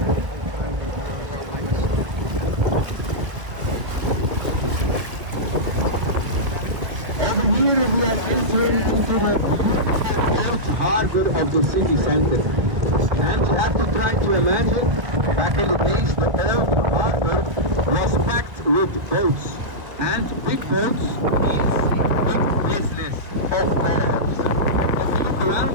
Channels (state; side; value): late; left; 1.5 ms